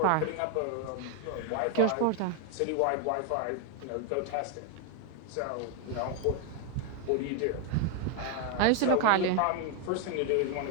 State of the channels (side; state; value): both; different; correlation 0.01